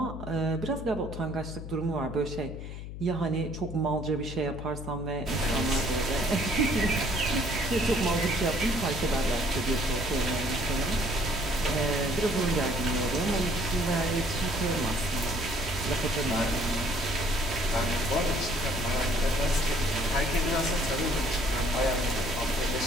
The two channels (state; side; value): noise; left; hum, 9 dB below the sound